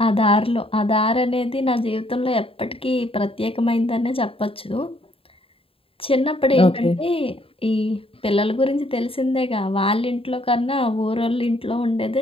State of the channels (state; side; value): late; right; 0.27 ms